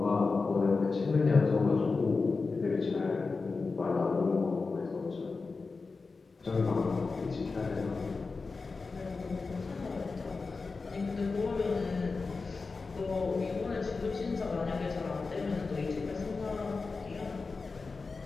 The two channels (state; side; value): quieter; right; 4.2 dB